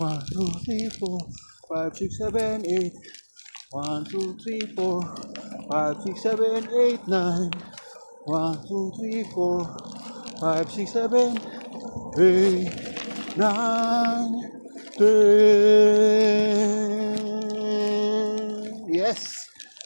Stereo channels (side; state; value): both; inverted; correlation -1.00